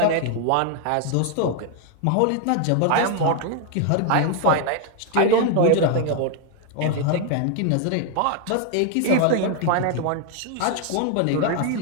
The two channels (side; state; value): both; different; correlation 0.00